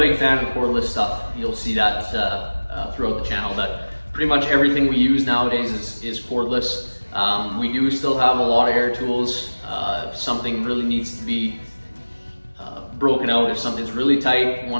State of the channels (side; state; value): both; inverted; correlation -1.00